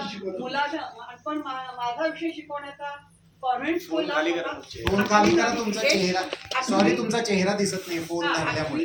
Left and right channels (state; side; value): identical; both; correlation 1.00